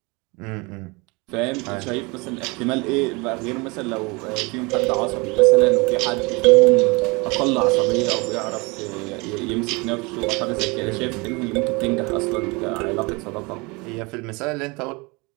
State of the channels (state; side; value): quieter; left; 27.1 dB